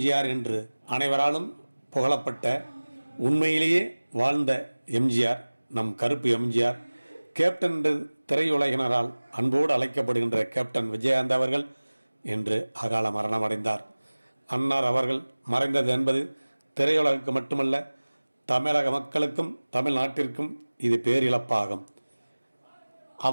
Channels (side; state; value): both; inverted; correlation -1.00